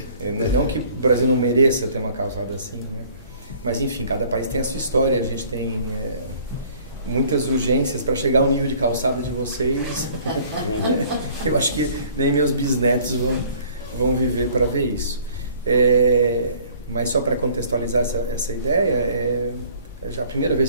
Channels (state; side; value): inverted; both; correlation -0.54